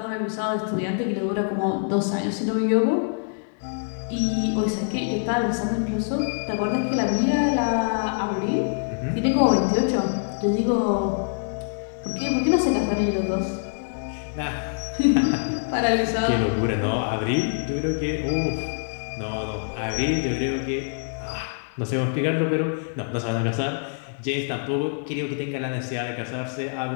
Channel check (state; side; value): silent; right; 62 dB below the other